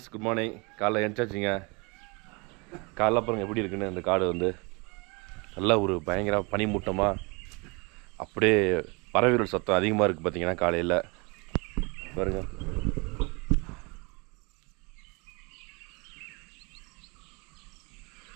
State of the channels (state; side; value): quieter; left; 29.2 dB